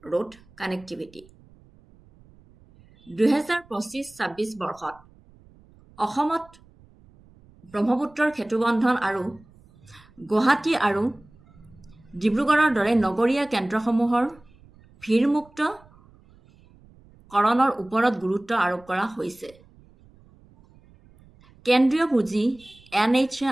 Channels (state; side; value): noise; right; rumble, 27 dB below the sound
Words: road connectivity. 2025-26 বৰ্ষত অসমত ব্ৰহ্মপুত্ৰৰ সেতুবন্ধন আৰু গুৱাহাটী আৰু ডিব্ৰুগড়ৰ দৰে নগৰীয়া কেন্দ্ৰসমূহৰ ভিৰমুক্ত কৰণৰ ওপৰত গুৰুত্ব আৰোপ কৰা হৈছে কেন্দ্ৰীয় পুঁজি